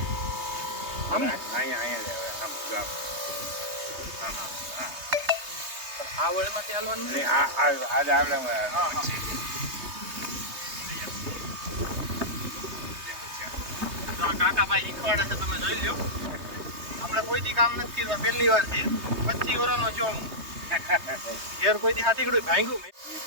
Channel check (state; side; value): late; left; 3.2 ms